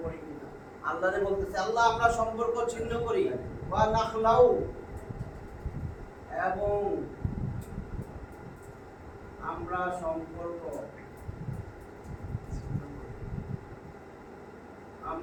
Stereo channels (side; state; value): both; identical; correlation 1.00